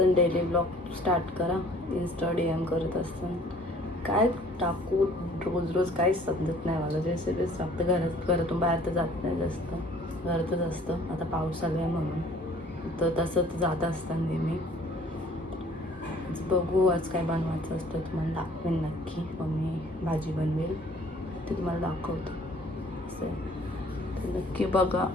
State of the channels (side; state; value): both; normal; correlation 0.55